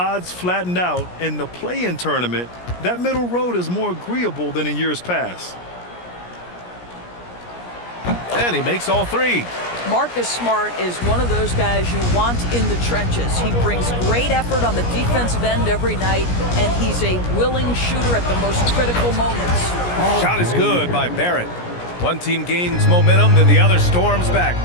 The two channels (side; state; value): right; late; 17 ms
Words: flattened out in the play-in tournament, that middle road is more agreeable than in years past. And he makes all 3. Marcus Smart is one of those guys you want in the trenches. He brings great effort on the defensive end every night, and he's a willing shooter at the most critical moments. Shot is good by Barrett. One team gains momentum, then the other storms back.